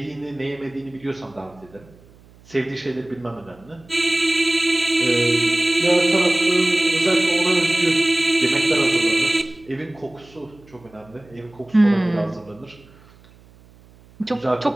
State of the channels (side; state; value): right; noise; hum, 26 dB below the sound